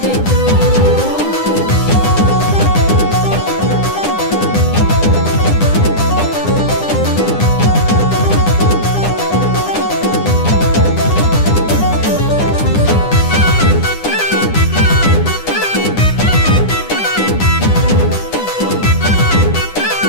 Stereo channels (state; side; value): late; right; 9.9 ms